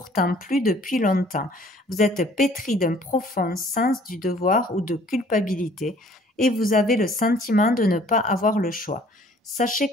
plus depuis longtemps. Vous êtes pétri d'un profond sens du devoir ou de culpabilité et vous avez le sentiment de ne pas avoir le choix. Sachez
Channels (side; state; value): both; normal; correlation 0.56